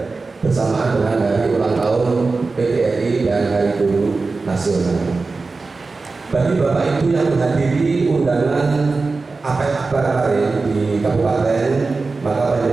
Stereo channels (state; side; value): quieter; left; 3.9 dB